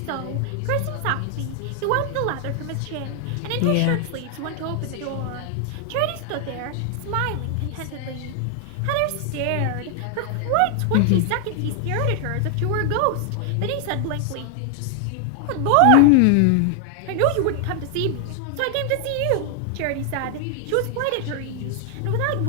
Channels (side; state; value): both; different; correlation 0.00